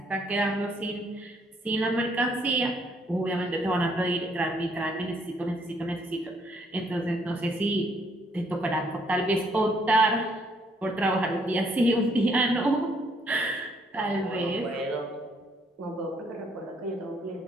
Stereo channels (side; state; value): both; normal; correlation 0.68